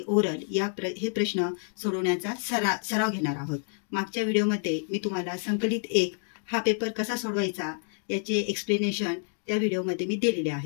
ओरल हे प्रश्न सोडवण्याचा सराव घेणार आहोत। मागच्या व्हिडिओमध्ये मी तुम्हाला संकलित 1 हा पेपर कसा सोडवायचा याचे एक्सप्लेनेशन त्या व्हिडिओमध्ये मी दिलेले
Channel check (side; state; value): right; silent; 59 dB below the other